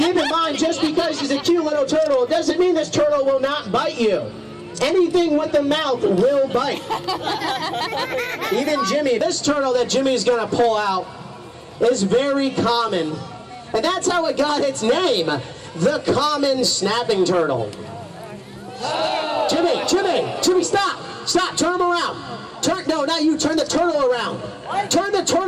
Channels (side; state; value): both; identical; correlation 1.00